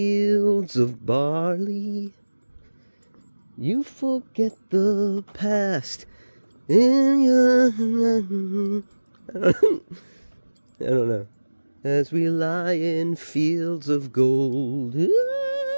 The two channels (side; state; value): both; inverted; correlation -1.00